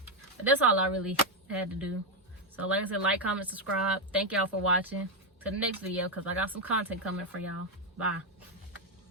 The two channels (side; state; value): both; normal; correlation 0.05